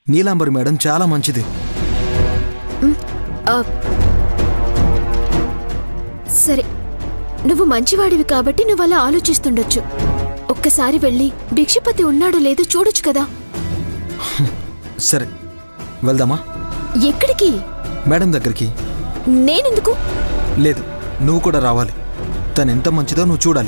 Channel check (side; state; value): both; inverted; correlation -1.00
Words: నీలాంబరి మేడం చాలా మంచిది. సరే, నువ్వు మంచివాడివి కాబట్టి నువ్వు అలా ఆలోచిస్తుండొచ్చు. ఒక్కసారి వెళ్ళి భిక్షపతి ఉన్నాడో లేదో చూడొచ్చు కదా. సరే, వెళ్దామా? ఎక్కడికి? మేడం దగ్గరికి. నేనెందుకు? లేదు, నువ్వు కూడా రావాలి. తను ఎంత మంచిదో నువ్వు